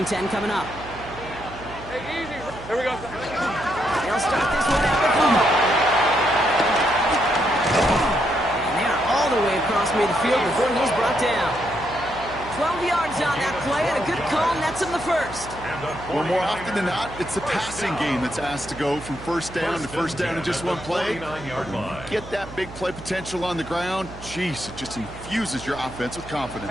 10 coming up. Hey, easy. Here we go. They'll start this one out with fumble. All the way across midfield before he's brought down. 12 yards on that play, and a good call nets him the first. Well, more often than not, it's the passing game that's asked to go from first down to first down in just one play. Get that big play potential on the ground. Jeez, it just infuses your offense with confidence.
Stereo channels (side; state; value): right; noise; hum, 15 dB below the sound